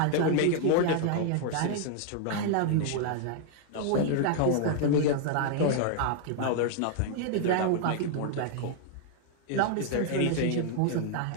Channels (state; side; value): different; both; correlation 0.00